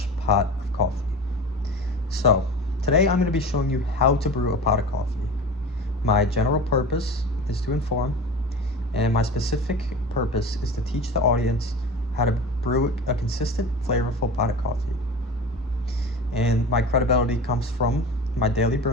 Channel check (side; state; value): both; normal; correlation 0.33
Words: pot of coffee. So, today I'm going to be showing you how to brew a pot of coffee. My general purpose is to inform, and my specific purpose is to teach the audience how to brew a consistent, flavorful pot of coffee. And my credibility comes from my daily